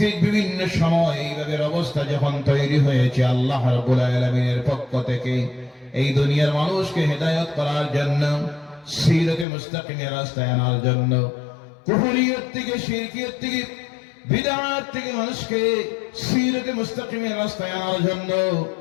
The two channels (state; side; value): drops out; right; at 9.5 s